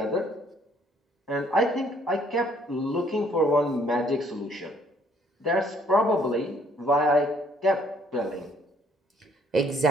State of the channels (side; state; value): both; normal; correlation 0.64